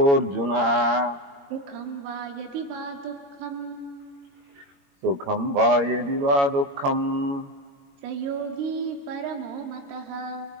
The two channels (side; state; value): left; late; 21 ms